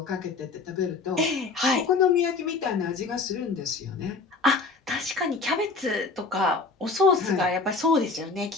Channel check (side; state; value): right; quieter; 4.1 dB